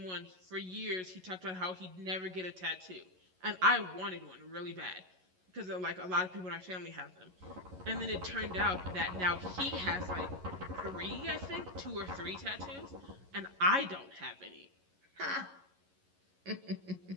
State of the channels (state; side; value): late; left; 11 ms